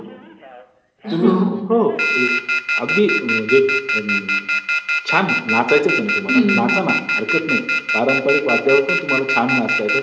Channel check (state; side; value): identical; both; correlation 1.00